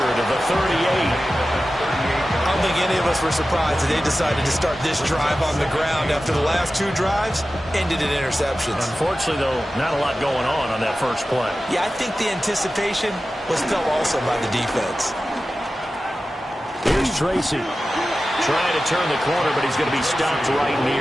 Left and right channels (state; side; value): normal; both; correlation 0.94